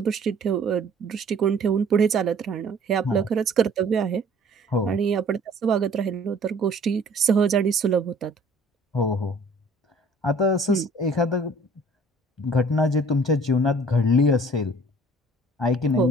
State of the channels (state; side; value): normal; both; correlation 0.53